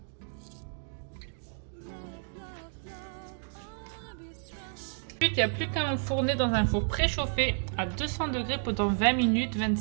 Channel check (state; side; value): silent; left; 57 dB below the other